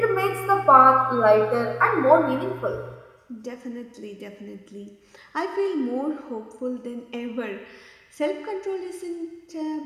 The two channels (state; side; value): identical; both; correlation 1.00